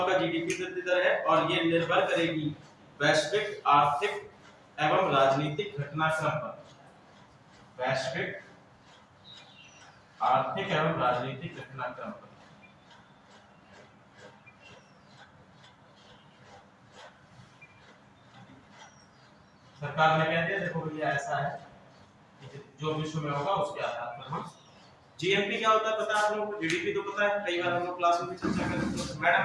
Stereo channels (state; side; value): identical; both; correlation 1.00